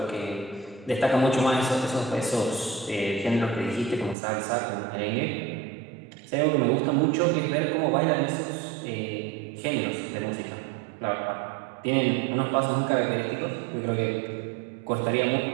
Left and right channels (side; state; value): left; drops out; at 4.2 s